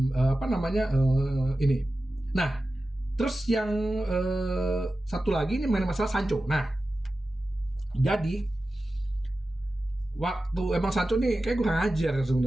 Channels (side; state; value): both; normal; correlation 0.94